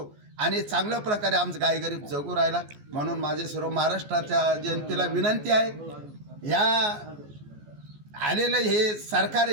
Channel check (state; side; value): late; left; 14 ms